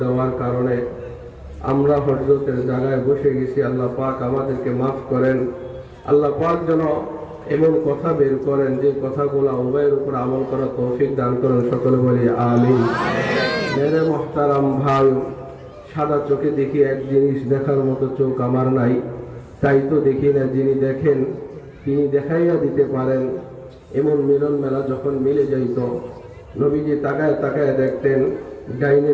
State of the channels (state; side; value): identical; both; correlation 1.00